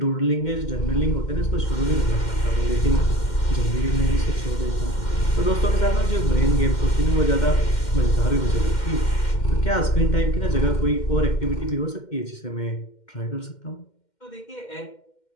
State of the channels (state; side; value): late; right; 2.1 ms